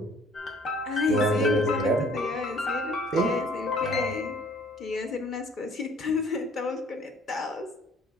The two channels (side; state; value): both; normal; correlation 0.56